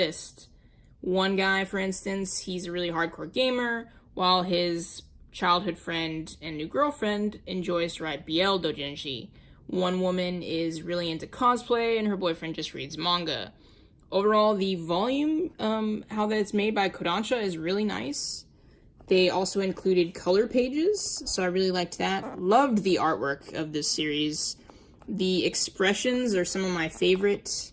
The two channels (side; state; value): both; identical; correlation 1.00